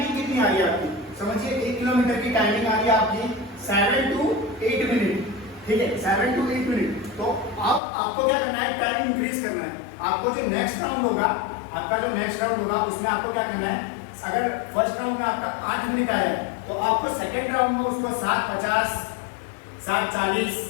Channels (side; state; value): right; drops out; at 7.8 s